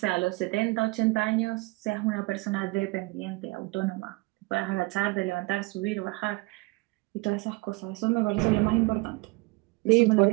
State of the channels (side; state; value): left; quieter; 24.6 dB